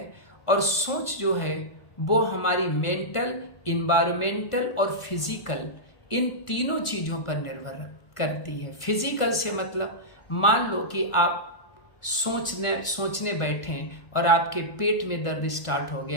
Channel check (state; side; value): late; right; 1.4 ms